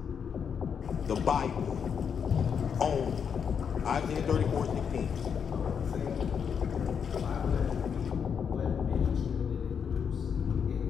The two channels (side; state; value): right; quieter; 7.0 dB